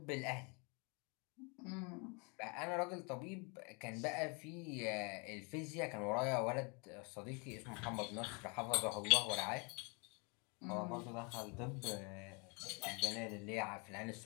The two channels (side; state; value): right; quieter; 32.5 dB